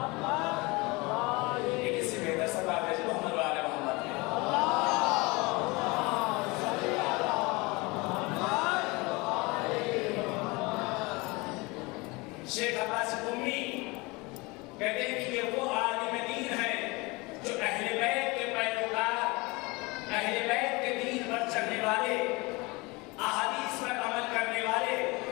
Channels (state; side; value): quieter; right; 25.1 dB